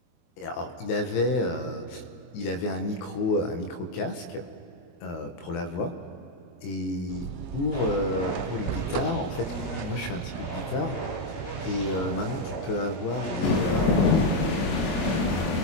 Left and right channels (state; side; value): late; right; 22 ms